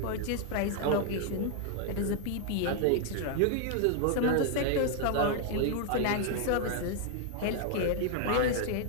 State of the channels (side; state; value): both; different; correlation 0.00